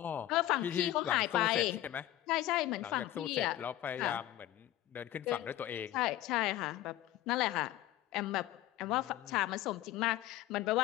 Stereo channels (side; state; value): right; quieter; 14.3 dB